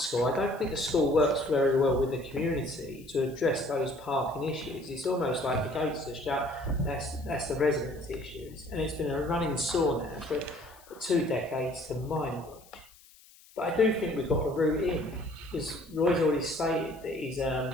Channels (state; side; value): noise; left; hiss, 25 dB below the sound